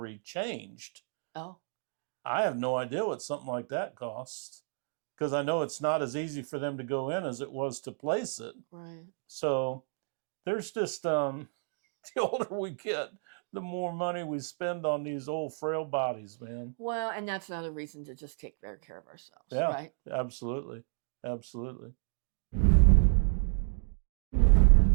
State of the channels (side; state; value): left; silent; digital silence